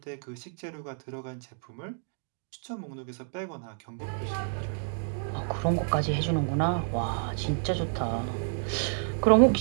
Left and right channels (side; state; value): left; silent; digital silence